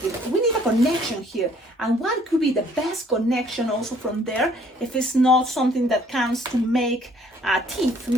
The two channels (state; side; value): normal; both; correlation 0.60